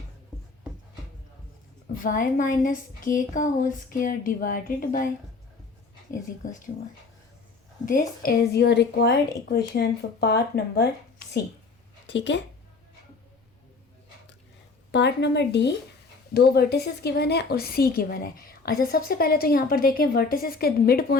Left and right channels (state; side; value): quieter; right; 4.1 dB